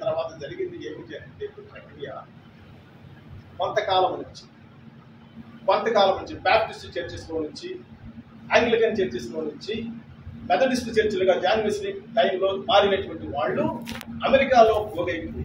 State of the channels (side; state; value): both; identical; correlation 1.00